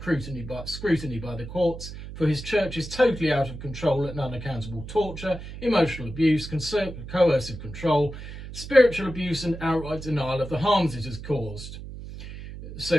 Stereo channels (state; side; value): noise; right; hum, 11 dB below the sound